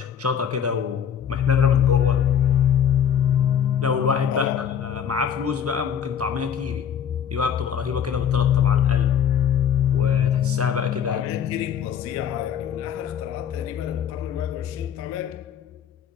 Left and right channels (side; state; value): right; quieter; 8.4 dB